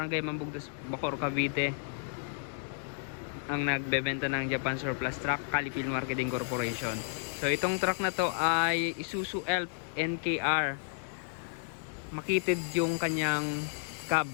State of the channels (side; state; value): right; silent; digital silence